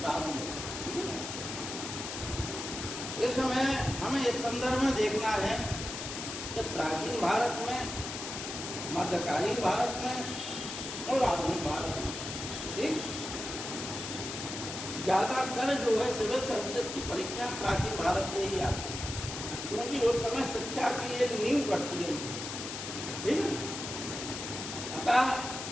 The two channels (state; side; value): noise; left; hiss, 6 dB below the sound